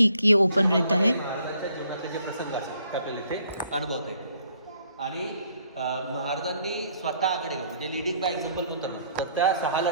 ये ओपन रहता है। जीवनातले जे प्रसंग असतात ते आपल्याला इथे अनुभवता येतात आणि महाराजांनी स्वतः आघाडी म्हणजे लिडिंग बाय एक्झाम्पल म्हणतो ना, तर त्या 6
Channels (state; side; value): inverted; both; correlation -0.65